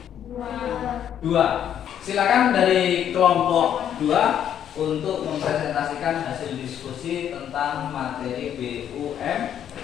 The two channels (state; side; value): quieter; right; 9.8 dB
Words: 2. Silakan dari kelompok 2 untuk mempresentasikan hasil diskusi tentang materi BUMN.